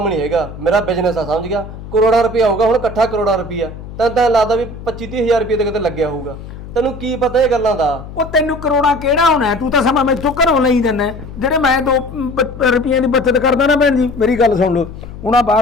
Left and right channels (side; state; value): left; noise; hum, 13 dB below the sound